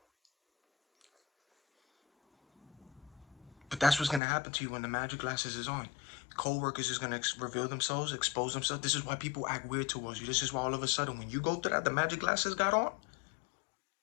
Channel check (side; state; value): right; drops out; at 4.2 s